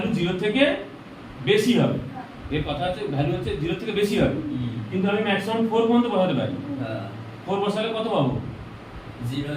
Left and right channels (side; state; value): both; identical; correlation 1.00